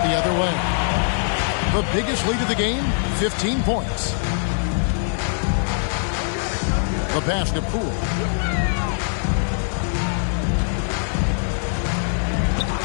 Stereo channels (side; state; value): right; silent; 64 dB below the other